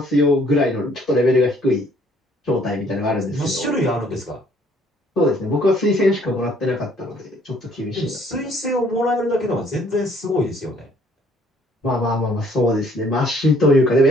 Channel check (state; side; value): normal; both; correlation 0.62